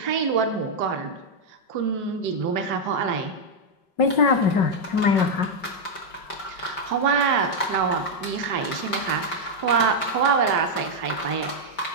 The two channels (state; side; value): late; right; 5.1 ms